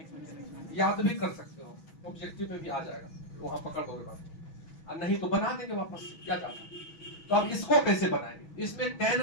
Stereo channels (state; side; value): late; right; 6.2 ms